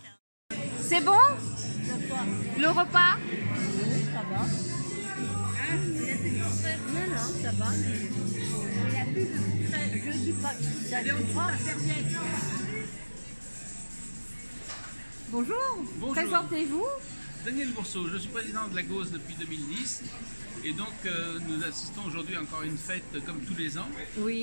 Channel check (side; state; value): both; inverted; correlation -1.00